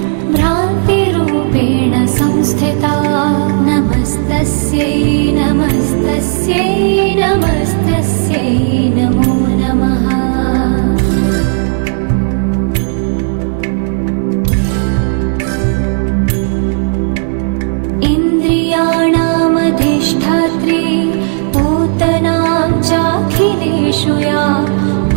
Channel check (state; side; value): silent; left; digital silence